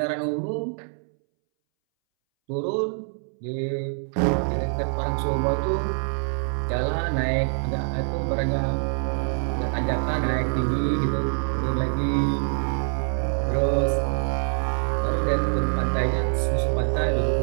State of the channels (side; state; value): left; silent; 62 dB below the other